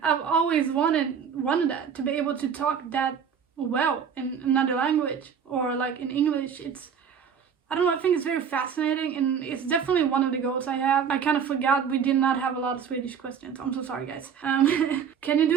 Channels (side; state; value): left; quieter; 7.3 dB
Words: I've always wanted that, to be able to talk that well in another language or like in English. I don't know, I think it's very fascinating, and it's definitely one of the goals I have. I kind of forgot we did not have a lot of Swedish questions. I'm so sorry, guys. Can you